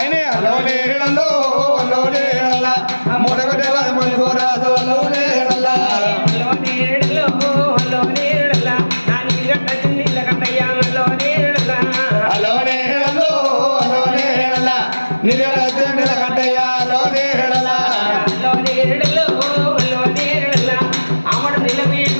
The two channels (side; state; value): both; inverted; correlation -1.00